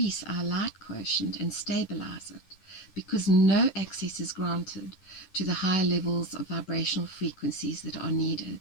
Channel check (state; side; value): late; right; 10 ms